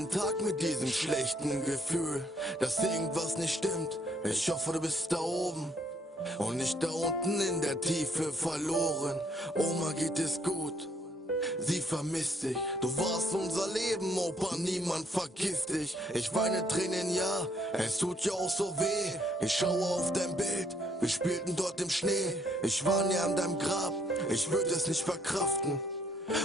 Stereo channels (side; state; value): both; normal; correlation 0.68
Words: Tag mit diesem schlechten Gefühl, dass irgendwas nicht stimmt. Ich hoffe, du bist da oben und nicht da unten in der Tiefe verloren. Oma geht es gut, sie vermisst dich. Du warst unser Leben, Opa, niemand vergisst dich. Ich weine Tränen, ja, es tut ja auch so weh. Ich schaue auf dein Bild, wir spielten dort im Schnee. Ich war näher an deinem Grab, ich würde es nicht verkraften.